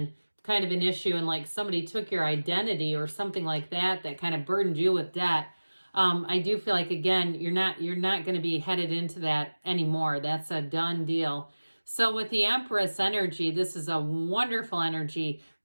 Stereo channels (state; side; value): inverted; both; correlation -1.00